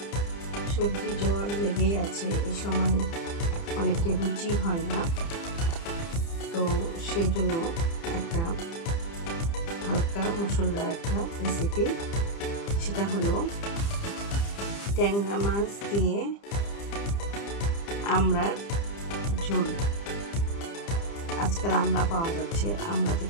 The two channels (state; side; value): late; right; 30 ms